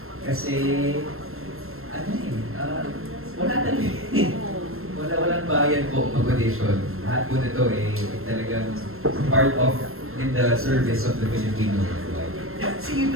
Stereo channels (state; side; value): late; left; 0.62 ms